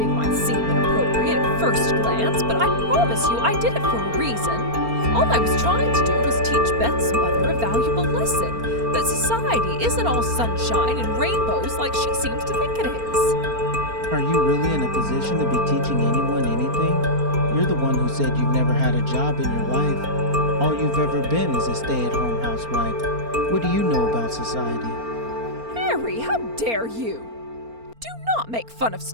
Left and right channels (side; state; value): left; late; 4.3 ms